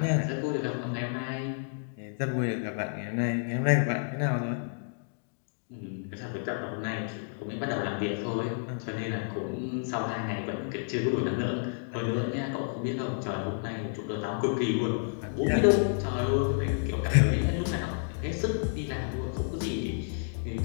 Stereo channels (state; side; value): silent; right; digital silence